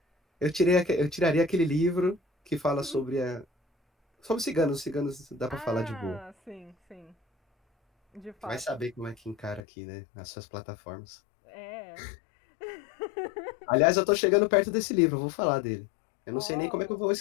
Eu tiraria aquele livro que fala sobre a. Sobre ciganos. Ciganos dá pra falar de boa. Ah, sim, sim. De Vai fato. saber como é que encara aqui, né? Nas suas plataformas. É. Aliás, eu tô chegando perto desse livro, eu vou falar dele. Eu não sei nem como é que eu Oh. vou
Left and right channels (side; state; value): right; drops out; at 9.6 s